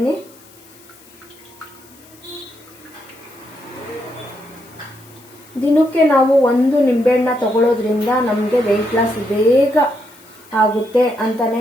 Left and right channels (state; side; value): noise; left; hiss, 25 dB below the sound